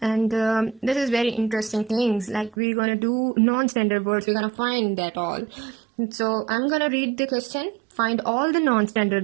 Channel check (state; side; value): drops out; left; at 2.6 s